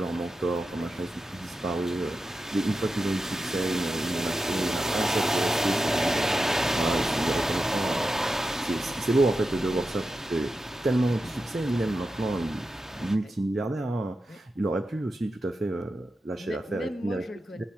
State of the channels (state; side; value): normal; both; correlation 0.90